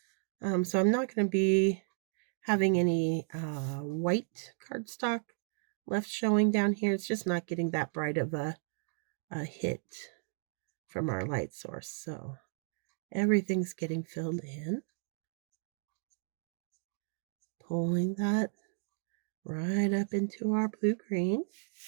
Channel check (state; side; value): silent; left; 55 dB below the other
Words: So I'm not going to be having any white cardstock left showing down here. It's just not getting that bright of a hit from our light source. So everything's getting filled in. Pulling that right up into our blue-green.